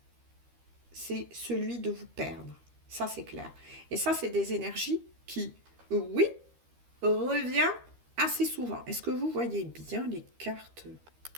C'est celui de vous perdre. Ça, c'est clair. Et ça, c'est des énergies qui, oui, revient assez souvent. Est-ce que vous voyez bien les cartes?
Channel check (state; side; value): late; left; 13 ms